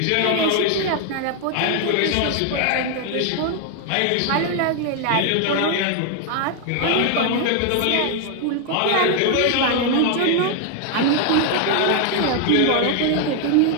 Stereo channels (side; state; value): both; different; correlation 0.01